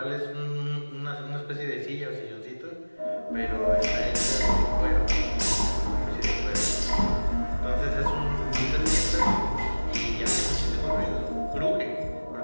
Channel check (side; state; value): both; inverted; correlation -1.00